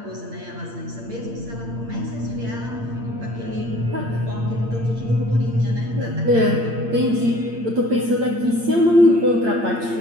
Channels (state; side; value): late; left; 8.7 ms